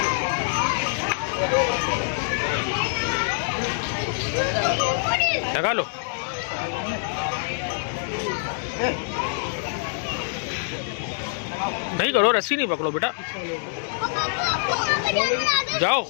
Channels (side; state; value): right; silent; 62 dB below the other